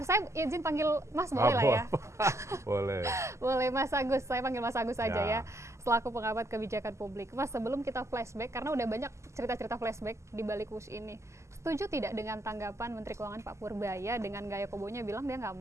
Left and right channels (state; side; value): late; left; 0.13 ms